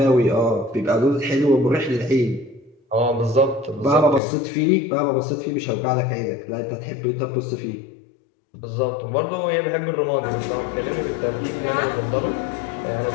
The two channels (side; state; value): right; drops out; at 4.2 s